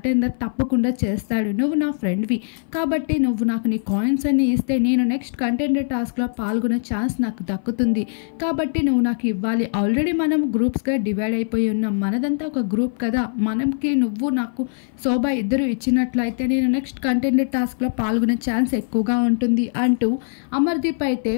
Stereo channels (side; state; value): right; silent; 59 dB below the other